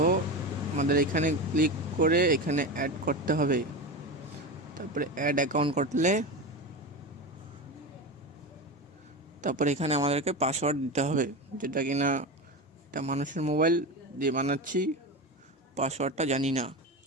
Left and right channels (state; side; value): normal; both; correlation 0.22